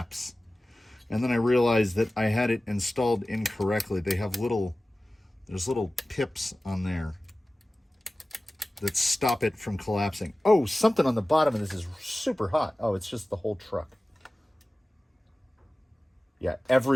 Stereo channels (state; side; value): normal; both; correlation 0.97